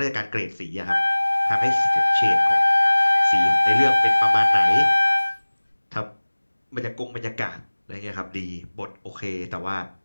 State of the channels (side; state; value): both; inverted; correlation -1.00